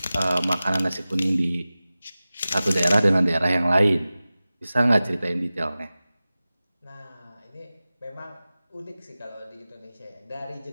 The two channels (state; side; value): inverted; both; correlation -0.97